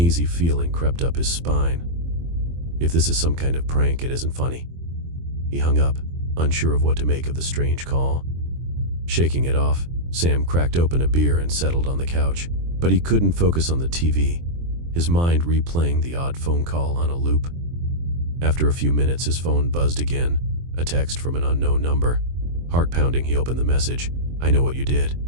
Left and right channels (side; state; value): left; late; 23 ms